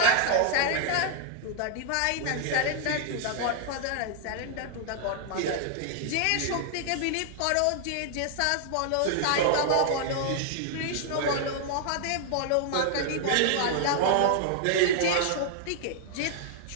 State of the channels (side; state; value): both; different; correlation -0.01